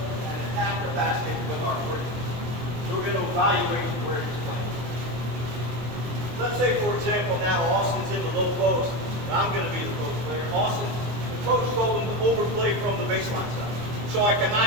and attack the basket with our quickness. So we're going to evaluate where he's playing. Let's say, for example, now Austin's in the low post, and I'm going to be the post player. Austin, the coach told him to overplay from the baseline side. So I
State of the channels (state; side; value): late; left; 24 ms